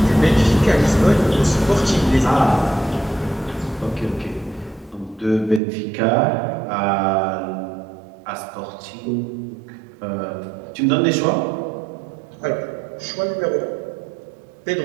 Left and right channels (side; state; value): left; drops out; at 5.6 s